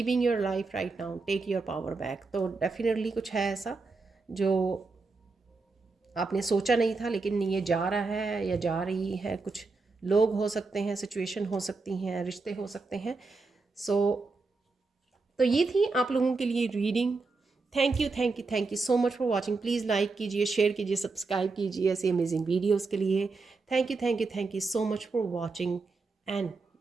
your life right now, take your power back. तो डेफिनेटली कुछ है ऐसा जो आपने सोचा नहीं था, लेकिन ये जा रहा है या जा रही है। कुछ लोग हो सकते हैं, सिचुएशन हो सकती हैं, रिश्ते हो सकते हैं। तो ये थी आप लोगों के लिए reading. Thank you, thank you, thank you so much for watching. Please like कीजिए, शेयर कीजिए, सब्सक्राइब कीजिए ऐसी अमेजिंग वीडियोज़ के लिए। Thank you, thank you, thank you so much for watching and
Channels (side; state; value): left; quieter; 3.9 dB